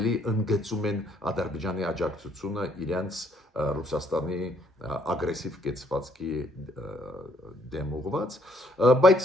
ընդգծում են Ադրբեջանի աջակցությունը իրենց Ռուսաստանի ագրեսիվ կեցվածքի դեմ ուղղված,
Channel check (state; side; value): normal; both; correlation 0.68